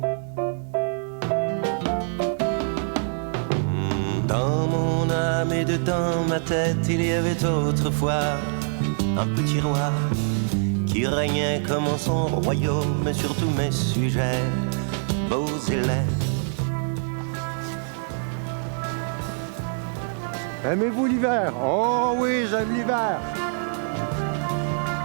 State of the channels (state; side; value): silent; left; digital silence